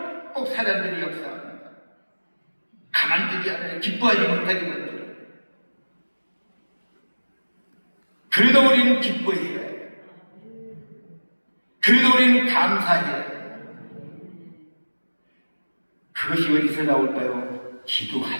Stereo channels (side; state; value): both; inverted; correlation -1.00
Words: 꼭 사람들이 역사합니다. 가만두지 않아요. 기뻐하지 못하게 만들어요. 그래도 우리는 기뻐해야 해요. 그래도 우리는 감사해야 해요. 그것이 어디서 나올까요? 기도할